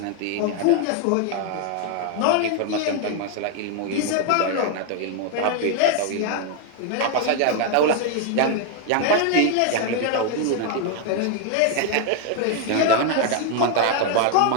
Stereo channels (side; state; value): both; different; correlation 0.01